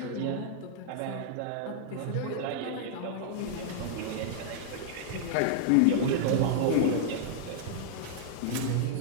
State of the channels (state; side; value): different; both; correlation -0.01